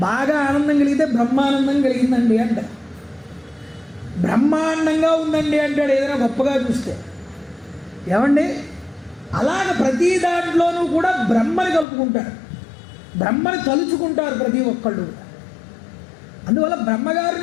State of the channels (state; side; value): drops out; right; at 11.9 s